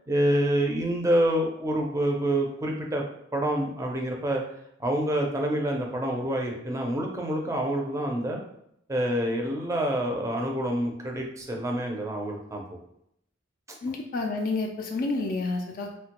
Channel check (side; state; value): both; normal; correlation 0.70